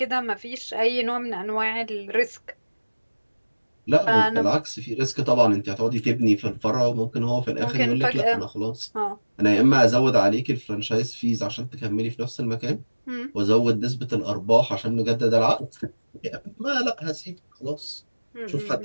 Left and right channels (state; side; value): inverted; both; correlation -1.00